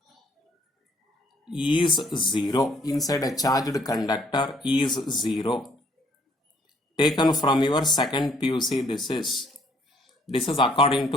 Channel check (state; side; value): normal; both; correlation 0.65